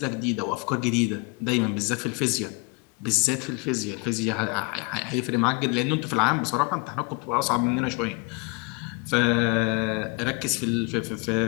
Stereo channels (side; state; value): right; quieter; 30.3 dB